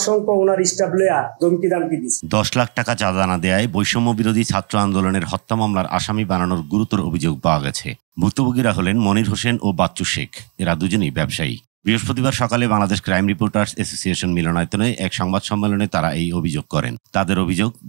ওনার স্টাফ লইয়া ধমকি দামকি দিচ্ছে। 10 লাখ টাকা চাঁদা না দেয়ায় বৈষম্য বিরোধী ছাত্র আন্দোলনের হত্যা মামলার আসামি বানানোর গুরুতর অভিযোগ পাওয়া গেছে। ভুক্তভোগীরা হলেন মনির হোসেন ও বাচ্চু শেখ। এরা দুজনেই ব্যবসায়ী। বৃহস্পতিবার সকালে বাংলাদেশ ক্রাইম রিপোর্টার্স অ্যাসোসিয়েশন মিলনায়তনে এক সংবাদ সম্মেলনে তারা এই অভিযোগ করেন। তাদের অভিযোগ,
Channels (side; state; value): left; quieter; 34.5 dB